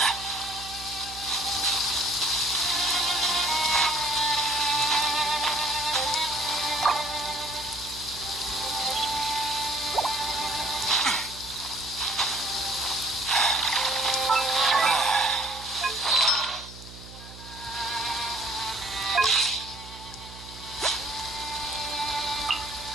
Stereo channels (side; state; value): right; noise; hum, 16 dB below the sound